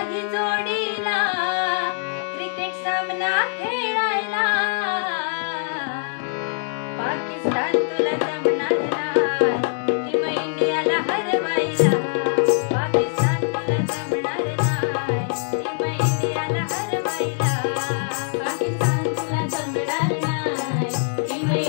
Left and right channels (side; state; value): right; silent; digital silence